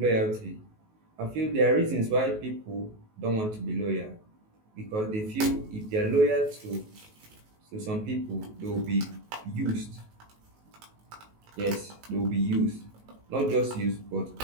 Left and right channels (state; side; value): late; left; 19 ms